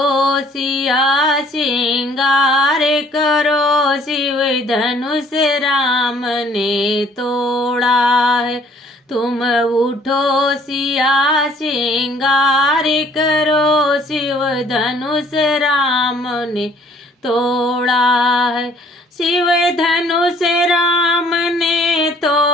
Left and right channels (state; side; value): normal; both; correlation 0.59